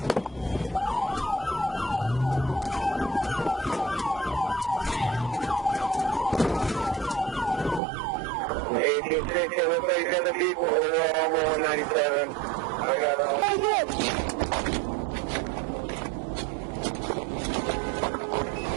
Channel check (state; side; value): drops out; left; at 7.8 s